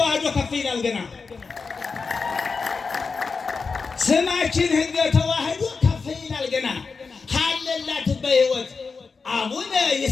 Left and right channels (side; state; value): right; quieter; 4.8 dB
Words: ከፍ ይላል። ገና ስማችን ሕገ ተዋህዶ ከፍ ይላል። ገና ካለላት በሕይወት አቡነ